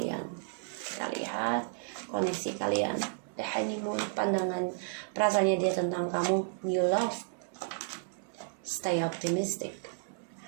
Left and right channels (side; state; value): left; silent; 56 dB below the other